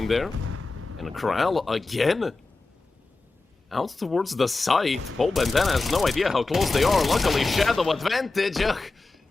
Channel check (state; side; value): quieter; right; 3.5 dB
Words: there. And Corral again. Out towards the site. Paul Bandana has no idea how close they are. Luckily, Shadow advantage. Ugh.